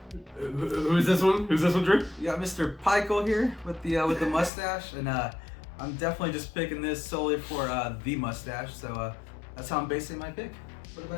who's this one? Who's this one, Drew? You got Mr. Pikel here with the mustache, and I'm definitely just picking this solely for the mustache. So that's how I'm basing my pick. What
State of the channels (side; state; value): right; drops out; at 4.5 s